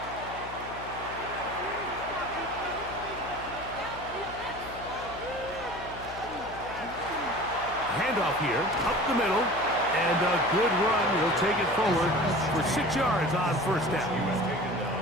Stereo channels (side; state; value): left; noise; hum, 15 dB below the sound